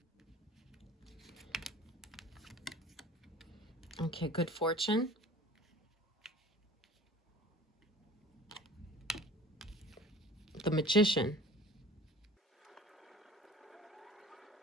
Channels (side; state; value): both; normal; correlation 0.44